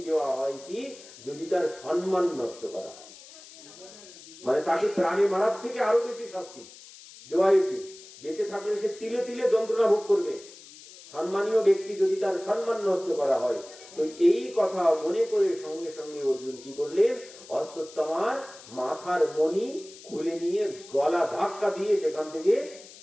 দেওয়া হয় কি, যদি তার সম্মান নষ্ট করা হয়, মানে তাকে প্রাণে মারার থেকে আরো বেশি শাস্তি দেওয়া উচিত। বেঁচে থাকলে সে তিলে তিলে যন্ত্রণা ভোগ করবে, সম্মানীয় ব্যক্তি যদি তার সম্মান নষ্ট করা হয়। তো এই কথা মনে করে সঙ্গে সঙ্গে অর্জুন কি করলেন, অশ্বত্থামার মাথার মণি খুলে নিয়ে গলা ধাক্কা দিয়ে সেখান থেকে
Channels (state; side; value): noise; left; hiss, 19 dB below the sound